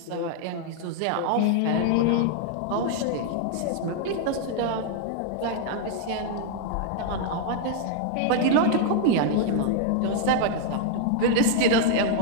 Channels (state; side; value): different; both; correlation 0.00